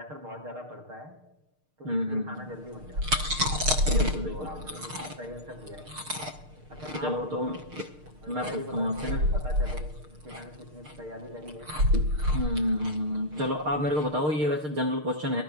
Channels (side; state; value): left; late; 6.6 ms